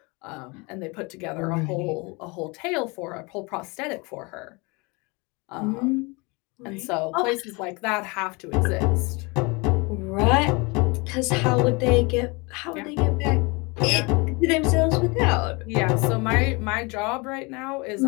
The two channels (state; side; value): quieter; right; 27.9 dB